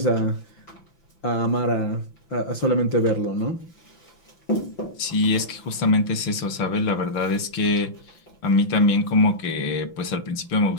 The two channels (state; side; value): late; right; 5.9 ms